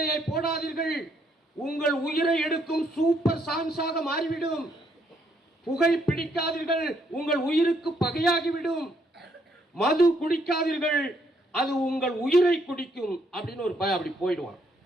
போடாதீர்கள், உங்கள் உயிரை எடுக்கும் சூப்பர் சான்ஸாக மாறிவிடும். புகை பிடிக்காதீர்கள், உங்கள் உயிருக்கு பகையாகிவிடும். மது குடிக்காதீர்கள், அது உங்கள் உயிரை குடிக்கும் அப்படின்னு ஒரு பையன் அப்படி போயிடுவான்.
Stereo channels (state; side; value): normal; both; correlation 0.71